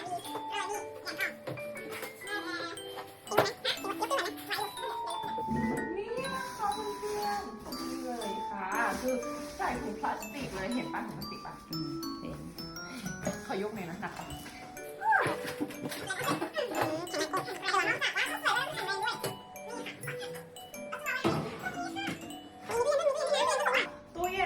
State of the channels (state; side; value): identical; both; correlation 1.00